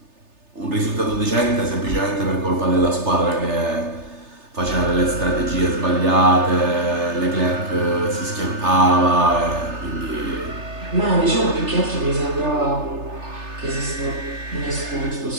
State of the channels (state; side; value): late; left; 3.3 ms